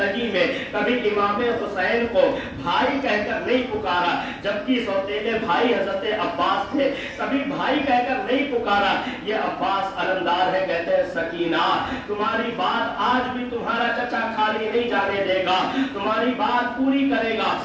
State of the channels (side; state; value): both; identical; correlation 1.00